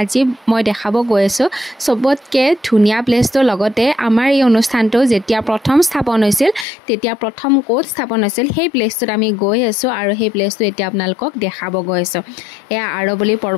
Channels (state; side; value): drops out; right; at 6.7 s